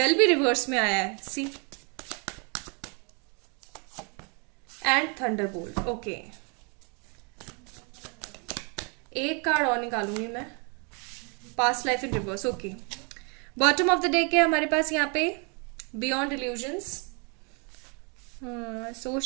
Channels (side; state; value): left; quieter; 35.1 dB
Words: भी रिवर्स में आया है, सी। And thunderbolt, okay. एक कार्ड और निकालूंगी मैं, past life in reverse, okay. Bottom of the deck है हमारे पास यहाँ पे बियॉन्ड इल्यूजन्स।